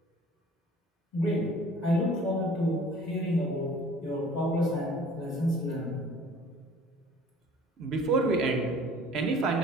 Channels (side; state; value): both; normal; correlation 0.50